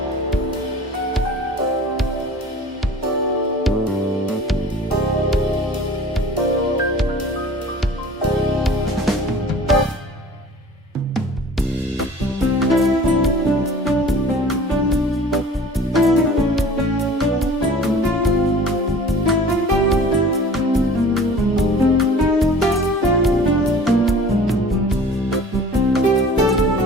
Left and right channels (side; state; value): both; normal; correlation 0.45